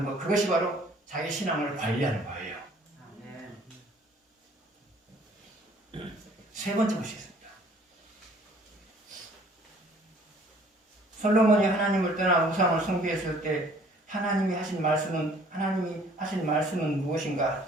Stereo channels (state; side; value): normal; both; correlation 0.56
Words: 것, 그것이 바로 자기 신앙을 관리하는 거예요. 세 번째 보시겠습니다. 솔로몬이 하나님을 떠나 우상을 숭배했을 때 하나님이 하신 말씀은 무엇인가?